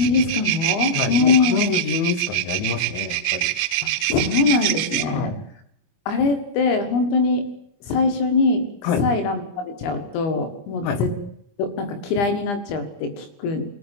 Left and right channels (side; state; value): right; late; 25 ms